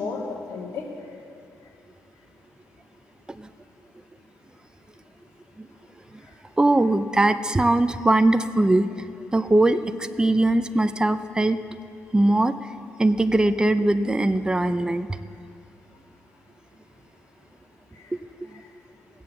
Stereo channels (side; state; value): both; normal; correlation 0.94